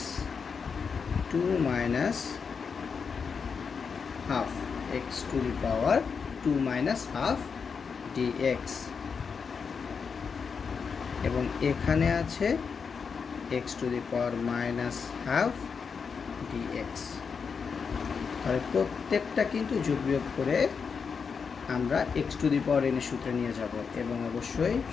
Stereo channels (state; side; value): quieter; right; 5.8 dB